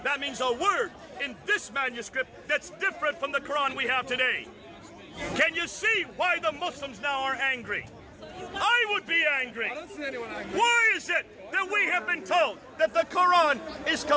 That means a word in this manuscript that's different from the Quran we have today. Can you see why the Muslims now are angry? I would be angry. I don't see anyone angry. Why is it that we have been told that the Quran is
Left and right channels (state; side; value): identical; both; correlation 1.00